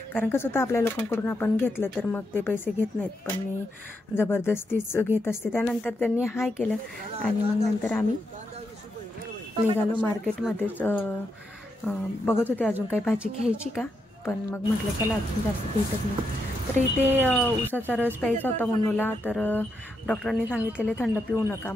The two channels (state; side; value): normal; both; correlation 0.82